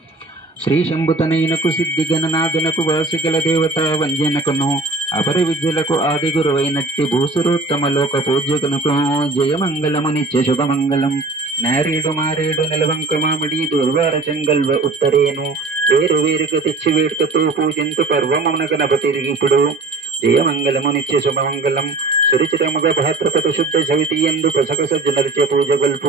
శ్రీ శంభుతనయునకు సిద్ధి గణనాథునకు వాసిగల దేవత వంజనకును అపర విద్యలకు ఆది గురువైనట్టి భూసురోత్తమ లోక పూజ్యకునకు జయమంగళము నిత్య శుభమంగళం. నారేడు మారేడు నిలవంక మామిడి దుర్వార చెంగల్వ ఉత్తరేను వేరు వేరుగా తెచ్చి వేడుకతో పూజింతు పర్వమున గణపతి ఇప్పుడు. జయమంగళము నిత్య శుభమంగళం. సురుచితముగ భాద్రపద శుద్ధ సవితి ఎందు పసక సజ్జనరిచ పూజ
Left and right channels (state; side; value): quieter; left; 3.5 dB